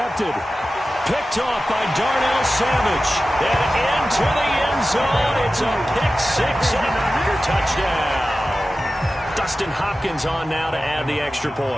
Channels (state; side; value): normal; both; correlation 0.94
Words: Picked off by Darnell Savage. And into the end zone. It's a pick-6 and a Packer touchdown. Dustin Hopkins on now to add the extra